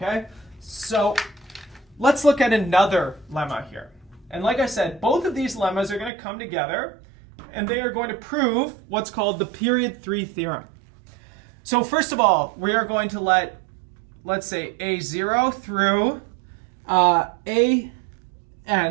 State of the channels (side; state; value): left; drops out; at 6.1 s